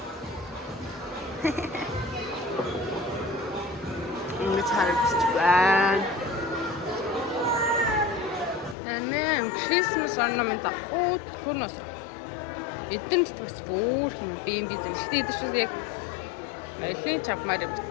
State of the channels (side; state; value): right; drops out; at 8.8 s